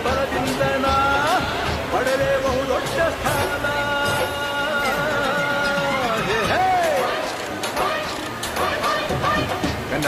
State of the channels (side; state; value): both; identical; correlation 1.00